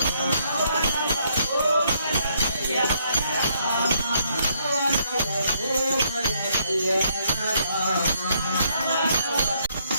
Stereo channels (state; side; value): inverted; both; correlation -0.71